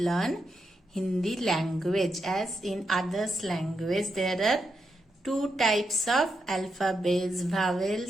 Hindi language. As in others language, there are two types of alphabets,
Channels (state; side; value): normal; both; correlation 0.84